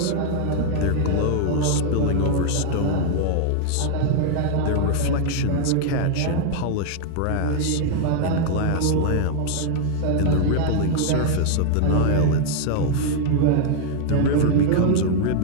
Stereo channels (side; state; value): both; different; correlation 0.00